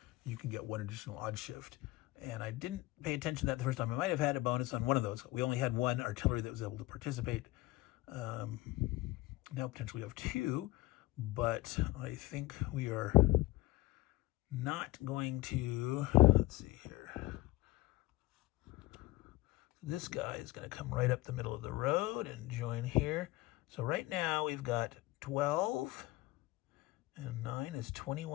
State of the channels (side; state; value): right; quieter; 19.6 dB